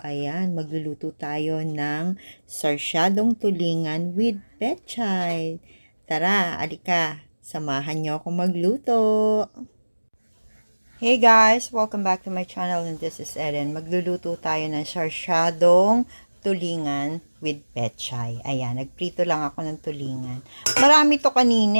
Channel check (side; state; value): both; inverted; correlation -1.00